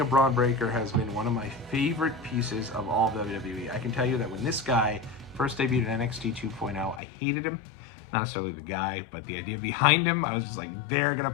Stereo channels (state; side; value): drops out; right; at 7.0 s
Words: of Bron Breakker has been one of my favorite pieces of all of WWE. I can tell you that when this guy first debuted in NXT 2.0, I hated him. Not necessarily the guy, but the idea behind him. I was just like, they're going